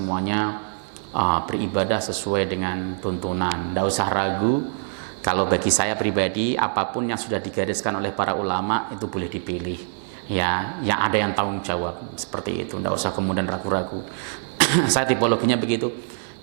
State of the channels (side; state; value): left; silent; 63 dB below the other